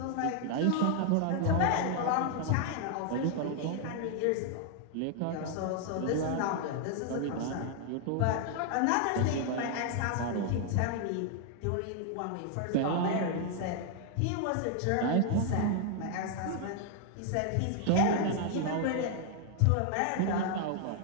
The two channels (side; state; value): both; different; correlation 0.00